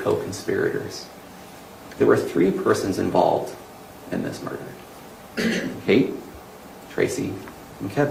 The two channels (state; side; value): identical; both; correlation 1.00